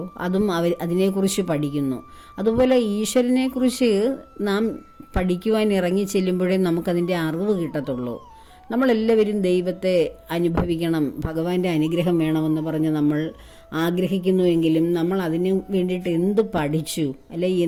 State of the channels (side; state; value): both; identical; correlation 1.00